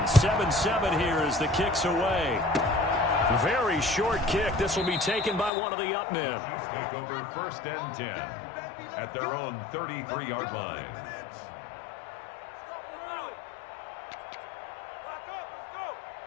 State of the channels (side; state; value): right; drops out; at 5.5 s